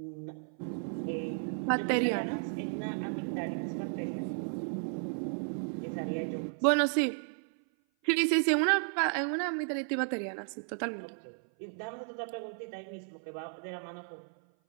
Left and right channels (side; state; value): left; silent; 55 dB below the other